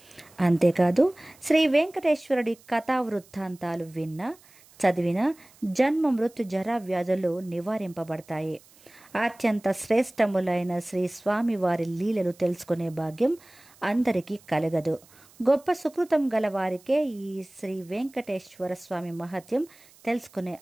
అంతేకాదు, శ్రీ వెంకటేశ్వరుడి కథా వృత్తాంతాలు విన్నా చదివిన జన్మ మృత్యు జరా వ్యాధులు నివారింపబడతాయి. అత్యంత శ్రేష్టములైన శ్రీ స్వామివారి లీలలు తెలుసుకునే భాగ్యం అందరికీ కలగదు. గొప్ప సుకృతం గల వారికే ఈ శ్రీ వెంకటేశ్వర స్వామి మహత్యం తెలుసుకునే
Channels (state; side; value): noise; right; hiss, 27 dB below the sound